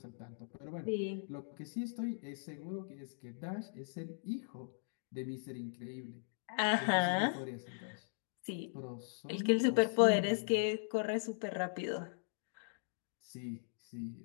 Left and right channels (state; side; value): silent; right; digital silence